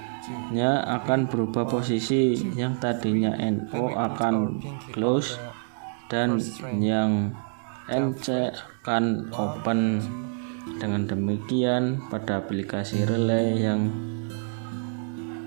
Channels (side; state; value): left; silent; digital silence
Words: akan berubah posisi, yang tadinya NO akan close dan yang NC akan open. Dengan demikian, pada aplikasi relay yang